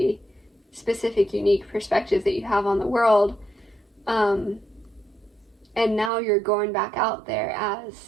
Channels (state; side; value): drops out; left; at 6.1 s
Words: specific, unique perspective that you have on the world. And now you're going back out there